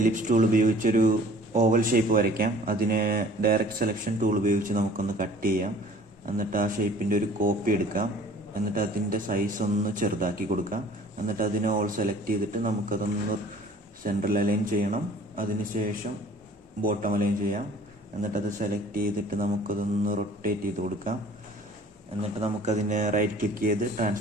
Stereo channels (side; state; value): both; normal; correlation 0.50